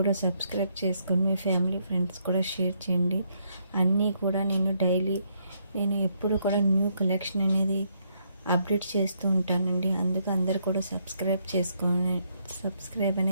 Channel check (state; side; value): inverted; both; correlation -0.74